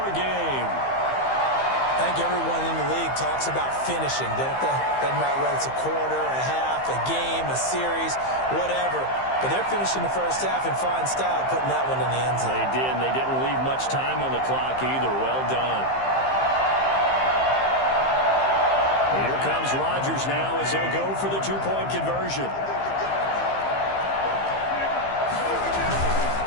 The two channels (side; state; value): right; late; 15 ms